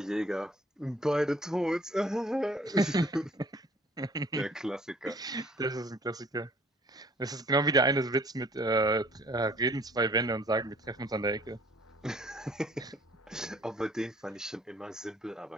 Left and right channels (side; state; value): both; normal; correlation 0.55